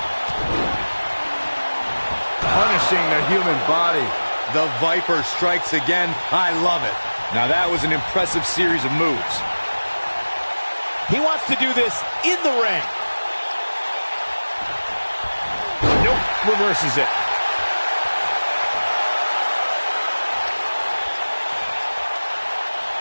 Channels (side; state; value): both; inverted; correlation -1.00